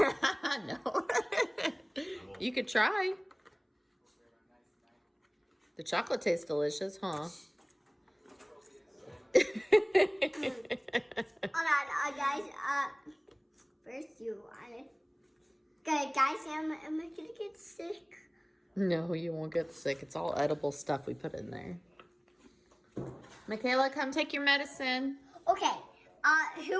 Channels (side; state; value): both; identical; correlation 1.00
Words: No. You could try. The chocolate tastes delicious, huh? Alright, guys. First you want it. Okay, guys, am I gonna get sick? No, you won't get sick. It's all edible stuff we put in there. Michaela, come take your medicine. Okay.